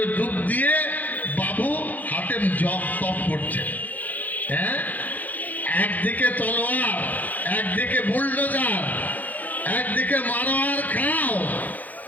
ডুব দিয়ে বাবু হাতে জপ তপ করছে। হ্যাঁ, একদিকে তলোয়ার, একদিকে বুলডোজার, একদিকে মারো আর খাও,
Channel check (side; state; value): right; late; 0.081 ms